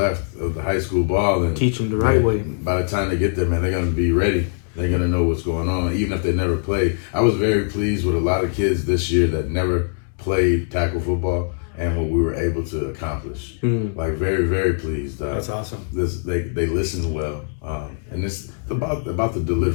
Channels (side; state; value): right; silent; 63 dB below the other